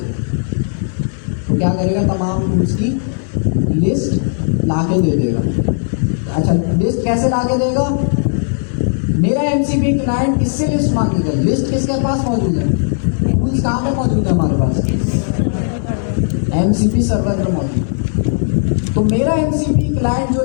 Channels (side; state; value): right; silent; digital silence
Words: तो क्या करेगा, तमाम टूल्स की लिस्ट ला के दे देगा। अच्छा लिस्ट कैसे ला के देगा, मेरा एमसीपी क्लाइंट किससे लिस्ट मांगेगा, लिस्ट किसके पास मौजूद है, टूल्स कहाँ पे मौजूद है हमारे पास, एमसीपी सर्वर पे मौजूद। तो मेरा एमसीपी क्लाइंट जो